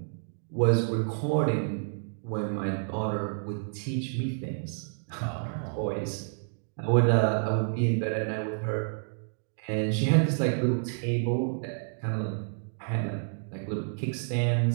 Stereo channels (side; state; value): left; silent; digital silence